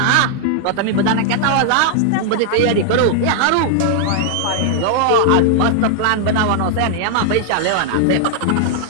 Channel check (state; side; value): different; both; correlation 0.00